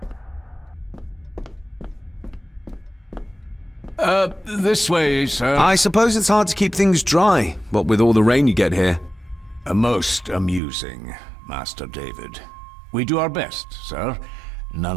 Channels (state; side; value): drops out; left; at 10.6 s